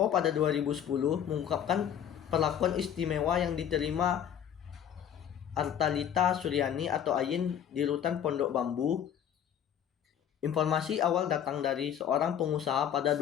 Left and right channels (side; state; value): right; quieter; 9.3 dB